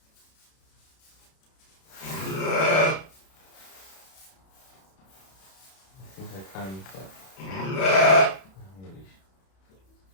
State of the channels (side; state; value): right; late; 31 ms